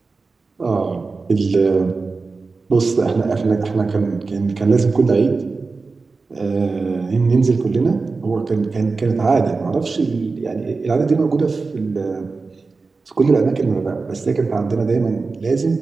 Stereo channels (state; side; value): quieter; left; 4.1 dB